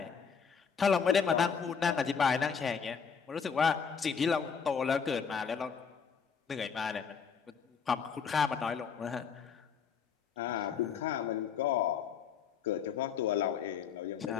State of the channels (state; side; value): quieter; right; 6.5 dB